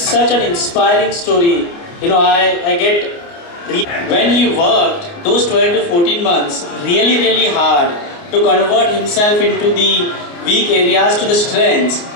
an inspiring story. I get, when he worked those 12 to 14 months really, really hard to convert himself into the weak areas to the strengths.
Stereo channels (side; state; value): right; late; 29 ms